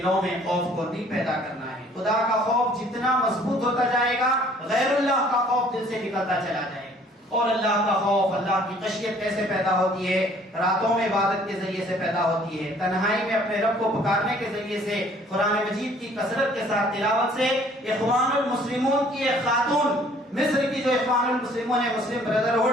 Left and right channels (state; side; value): normal; both; correlation 0.57